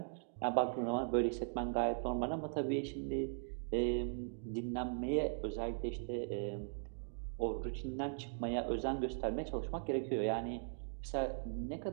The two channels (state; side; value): silent; left; digital silence